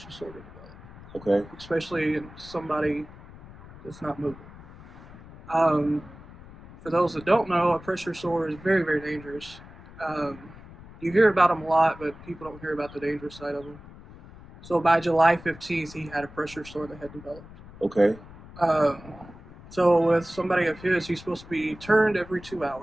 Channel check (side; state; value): left; noise; rumble, 18 dB below the sound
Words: sore to develop. Okay. Especially in somebody that's not moving. For those that don't know, a pressure sore is very, very dangerous. You hear about them a lot, but people don't hear about the dangerous side of them. So by July 15th, he had a pressure sore that had developed. Okay. So with somebody of his, he's supposed to be turned every 2